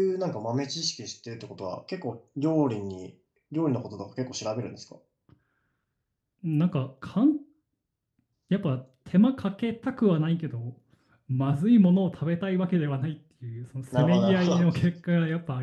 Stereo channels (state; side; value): identical; both; correlation 1.00